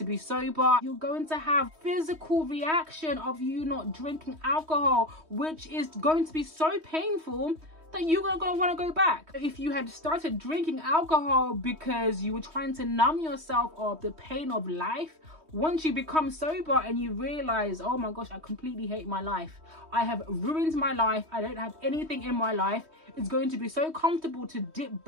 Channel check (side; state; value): left; late; 3.2 ms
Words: be sober. You're going to have physical reaction of you not drinking alcohol, which is going to be so painful that you're gonna want to go back. If you had started drinking alcohol because you were trying to numb yourself of the pain of life, once you become sober and you realize, oh my gosh, I completely hate my life, I have ruined my life, I don't have anything in my life, it's going to be so comfortable to dip